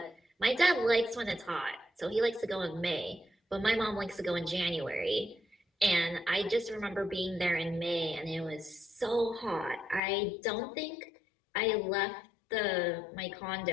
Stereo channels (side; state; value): right; drops out; at 10.0 s